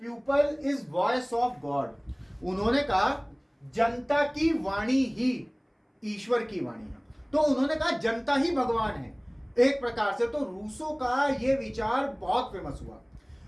people is voice of God. उन्होंने कहा जनता की वाणी ही ईश्वर की वाणी है। तो उन्होंने कहा जनता ही भगवान है एक प्रकार से। तो रूसो का यह विचार बहुत फेमस हुआ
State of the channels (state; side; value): identical; both; correlation 1.00